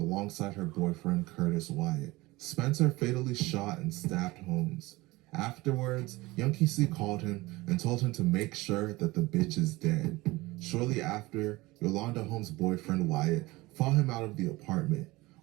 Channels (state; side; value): quieter; left; 20.9 dB